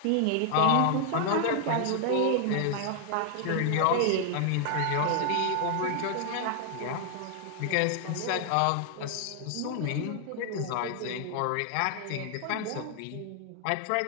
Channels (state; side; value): different; both; correlation 0.00